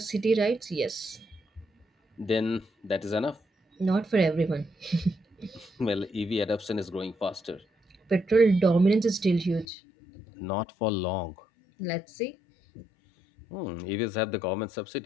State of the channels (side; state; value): right; drops out; at 9.7 s